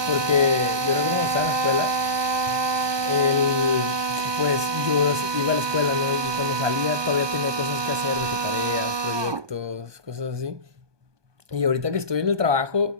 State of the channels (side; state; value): left; late; 1.2 ms